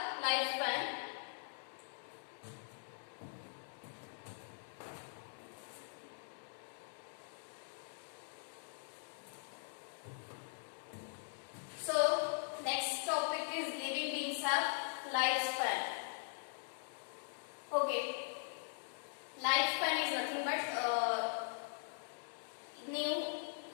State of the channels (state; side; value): silent; right; digital silence